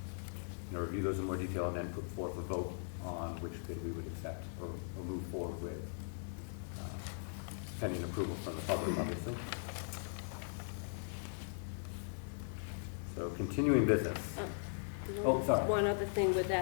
review those in more detail and then put forth a vote on which bid we would accept or move forward with, pending approval from the public, obviously. So continuing business. Oh, sorry. One other thing with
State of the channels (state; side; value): silent; right; digital silence